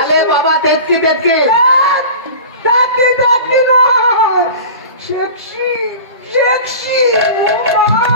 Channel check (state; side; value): inverted; both; correlation -0.36